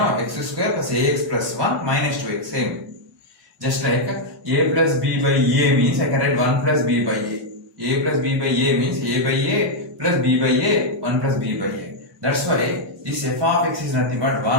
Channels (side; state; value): both; normal; correlation -0.02